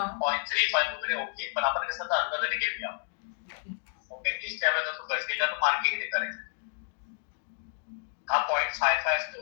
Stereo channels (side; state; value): right; silent; digital silence